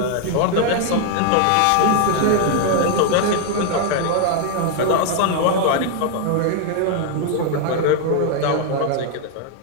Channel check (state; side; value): different; both; correlation 0.00